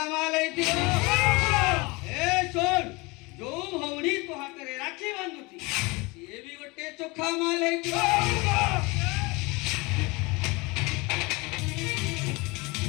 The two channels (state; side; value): quieter; right; 25.4 dB